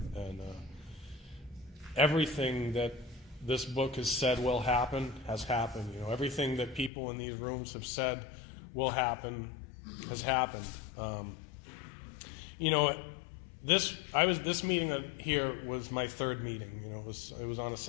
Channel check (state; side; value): drops out; right; at 6.9 s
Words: And everything that this book has said will happen has happened. Everything that people in these rooms have said will happen has happened. This meeting here was my third meeting. It was on a